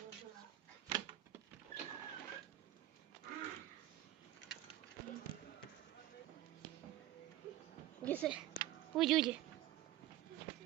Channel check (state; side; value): quieter; left; 14.2 dB